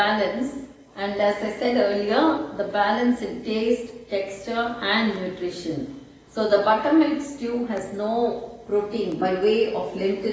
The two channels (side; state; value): both; identical; correlation 1.00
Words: and as I said earlier, the balance in taste, texture and nutrition. So the buttermilk stew has no protein by way of